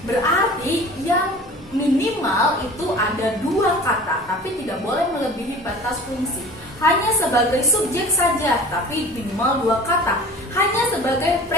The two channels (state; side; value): normal; both; correlation 0.42